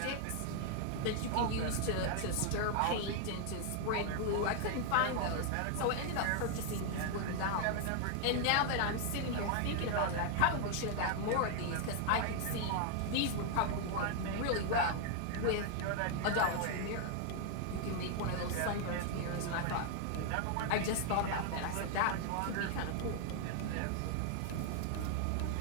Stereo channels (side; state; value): both; different; correlation 0.00